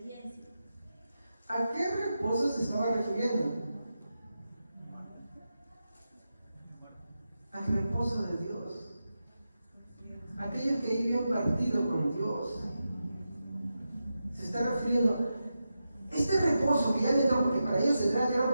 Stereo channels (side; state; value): both; inverted; correlation -0.90